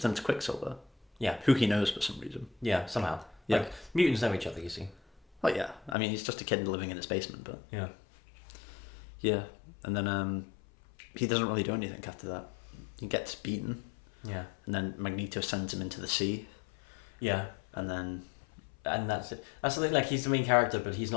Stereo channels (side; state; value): right; drops out; at 6.0 s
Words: to Quicksilver. Yeah. Who he knows for some reason. Yeah, somehow. Yeah. Like, mutants know each other, you see. Oh, yeah. I mean, he's just a kid living in his basement, but... Yeah. Yeah. And then, he doesn't really do anything after that. He gets beaten. Yeah. And then Magneto sends him into the sea. Yeah. And then... And that's it. That's the thing, like, he's the main character, but he's